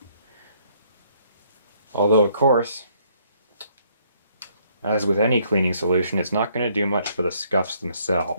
Although, of course, as with any cleaning solution, it's not going to do much for the scuffs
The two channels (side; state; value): both; inverted; correlation -0.67